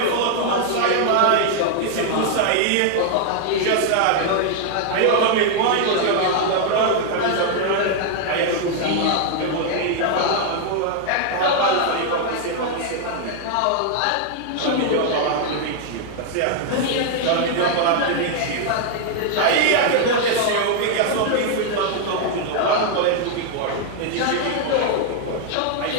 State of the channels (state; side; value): different; both; correlation 0.00